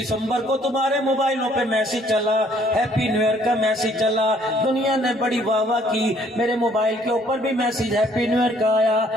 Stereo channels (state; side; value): normal; both; correlation 0.62